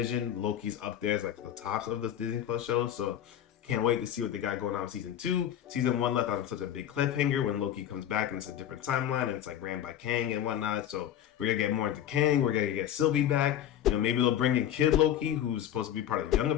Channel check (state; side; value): quieter; right; 10.6 dB